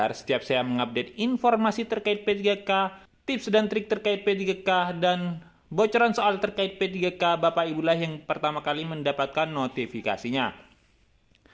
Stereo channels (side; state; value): both; identical; correlation 1.00